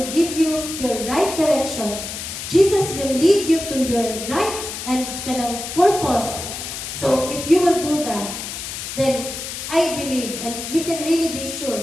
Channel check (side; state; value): left; noise; hiss, 7 dB below the sound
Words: give you your right direction. Jesus will lead you to your right and kanang purpose. So if you will do that, then I believe, and we can really be